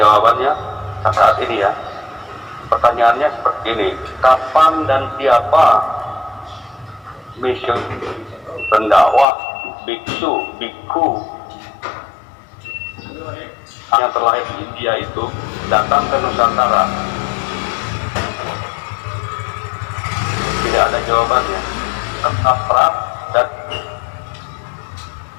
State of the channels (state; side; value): drops out; right; at 9.2 s